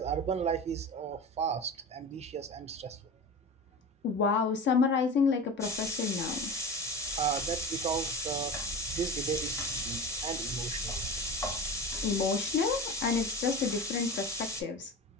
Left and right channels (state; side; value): normal; both; correlation 0.30